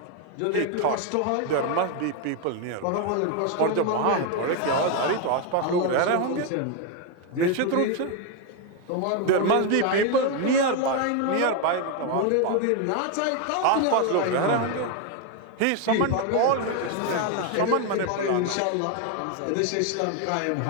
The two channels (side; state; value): both; different; correlation 0.01